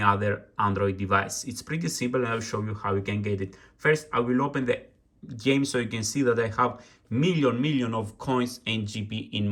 other Android device. It's pretty simple and I'll show you how you can get it. First I will open the game so you can see that I have million of coins and GP in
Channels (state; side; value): identical; both; correlation 1.00